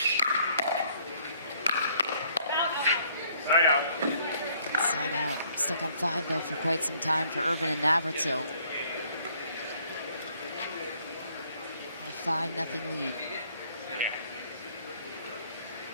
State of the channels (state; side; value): inverted; both; correlation -0.63